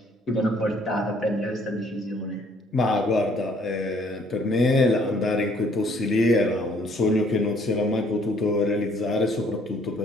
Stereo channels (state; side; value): normal; both; correlation 0.63